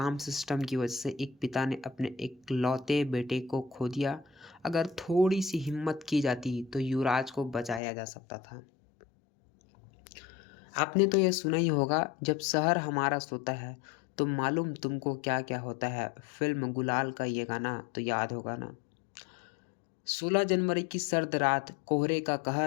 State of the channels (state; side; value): drops out; right; at 7.8 s